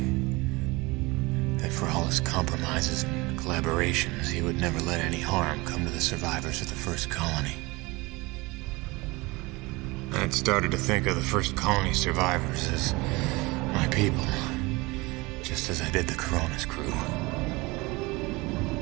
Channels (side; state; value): left; quieter; 23.6 dB